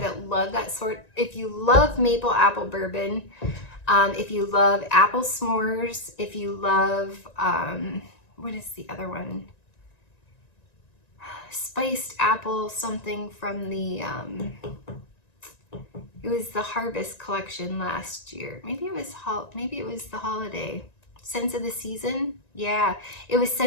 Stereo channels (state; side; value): late; right; 1.9 ms